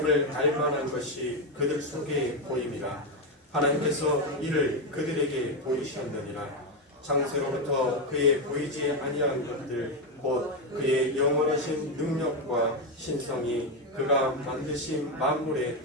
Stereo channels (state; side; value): normal; both; correlation 0.08